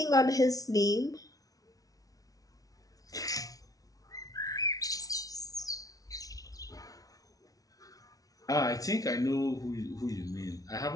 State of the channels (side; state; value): right; late; 0.18 ms